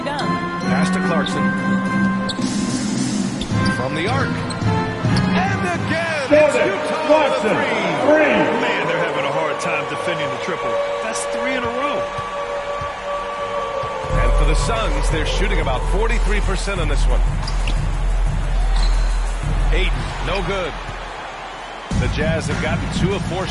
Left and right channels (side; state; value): both; identical; correlation 1.00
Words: done. Pass to Clarkson. From the arc. And again, it's Utah with a 3. Man, they're having a hard time defending the triple. That's 3 in a row. And for the Suns, they're shooting about 43% on this one. Ayton, no good. The Jazz have gotten 2 of 4